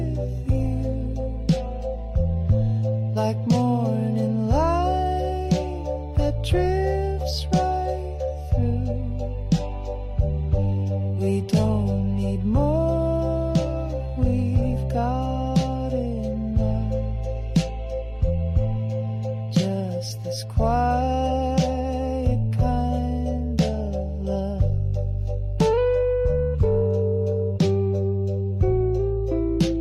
you, like morning light that drifts right through. We don't need more, we've got enough. Just this quiet kind of love.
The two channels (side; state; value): both; identical; correlation 1.00